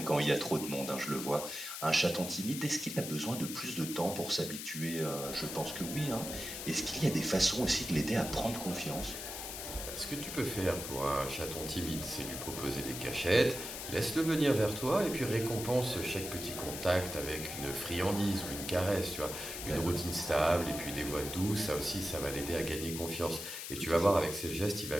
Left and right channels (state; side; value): noise; left; hiss, 7 dB below the sound